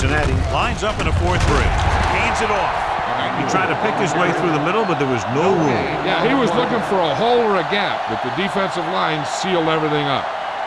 lines up in a 4-3. Hands it off. He tried to pick his way through the middle, but there was no room. Yeah, he was looking for a hole or a gap, but the defensive line sealed everything up.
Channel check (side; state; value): both; identical; correlation 1.00